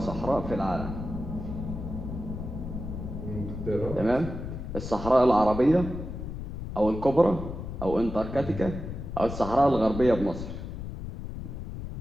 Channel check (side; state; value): left; noise; rumble, 7 dB below the sound